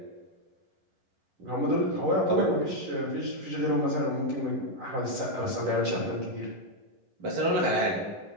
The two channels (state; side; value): late; left; 11 ms